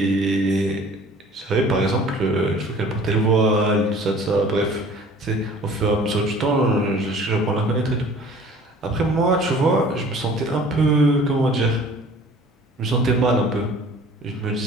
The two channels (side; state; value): both; normal; correlation 0.49